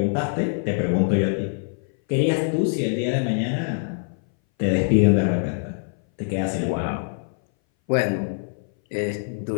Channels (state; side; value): silent; right; 60 dB below the other